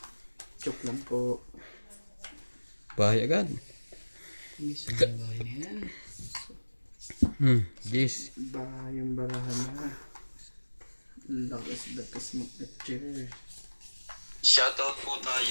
Joke lang po. Bahay agad. Hindi siya ng bahay na yan. Yes. Yung barahan na. Lakas mag-chair. Shoutout po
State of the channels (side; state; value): both; inverted; correlation -1.00